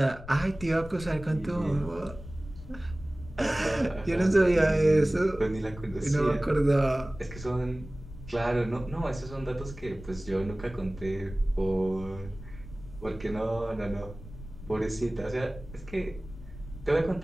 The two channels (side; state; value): left; noise; rumble, 15 dB below the sound